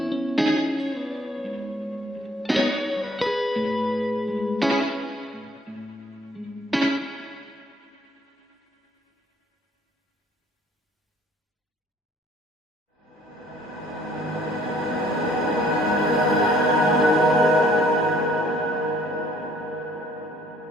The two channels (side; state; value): both; normal; correlation 0.60